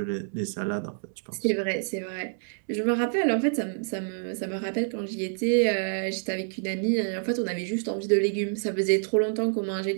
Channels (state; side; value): silent; left; digital silence